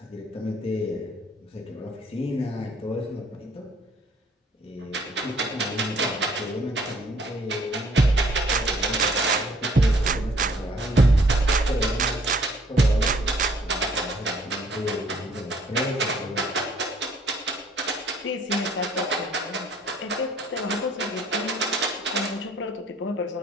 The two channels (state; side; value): normal; both; correlation 0.61